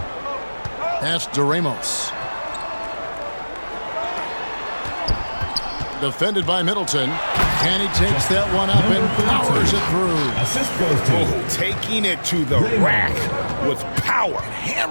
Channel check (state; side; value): inverted; both; correlation -1.00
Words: Pass to Ramos. Defended by Middleton. And he takes that one up and powers it through. Assist goes to. Oh, taking it to the rack with power.